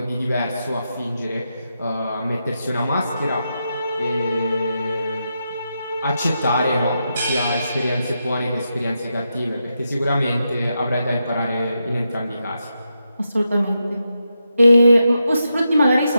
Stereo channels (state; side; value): inverted; both; correlation -0.86